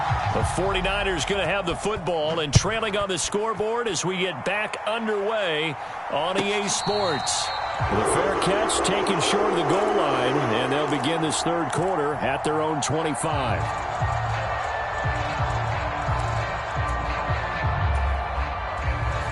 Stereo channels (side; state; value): both; identical; correlation 1.00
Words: The 49ers going to have the football and trailing on the scoreboard as we get back underway on EA Sports. The fair catch taken short of the goal line, and they'll begin this 3rd quarter at their own 25.